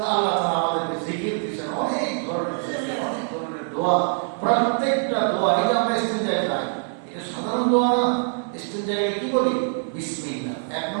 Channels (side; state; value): left; silent; 63 dB below the other